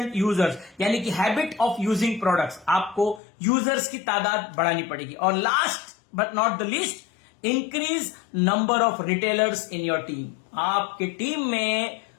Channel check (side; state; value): right; drops out; at 3.2 s